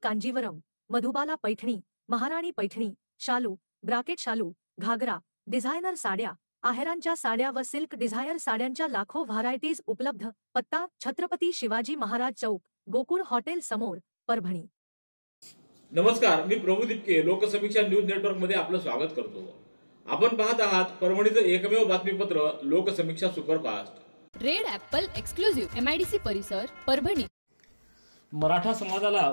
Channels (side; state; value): both; inverted; correlation -1.00